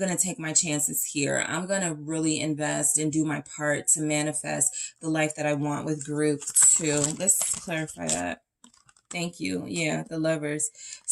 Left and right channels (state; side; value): identical; both; correlation 1.00